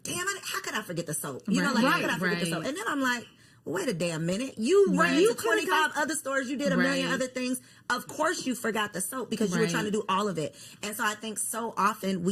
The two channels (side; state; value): both; identical; correlation 1.00